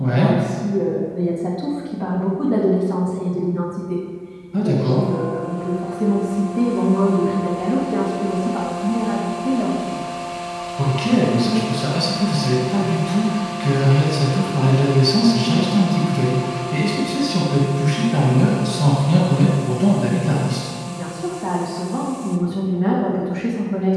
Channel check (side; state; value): both; identical; correlation 1.00